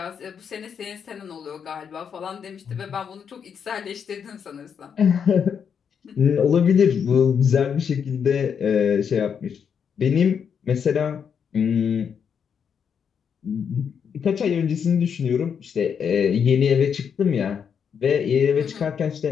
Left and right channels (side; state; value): right; quieter; 7.2 dB